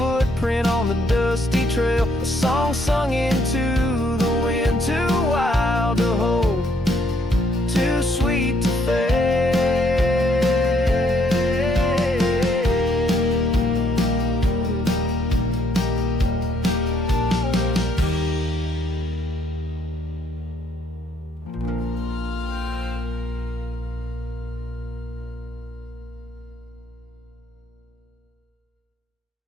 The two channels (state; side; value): normal; both; correlation 0.69